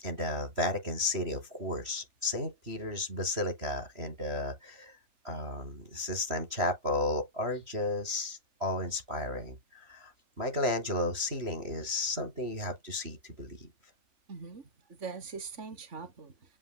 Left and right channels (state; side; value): late; left; 3.1 ms